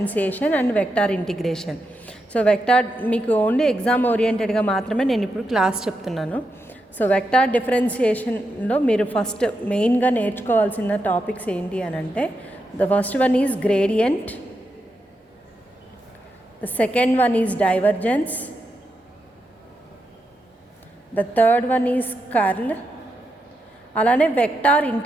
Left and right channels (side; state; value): both; normal; correlation 0.85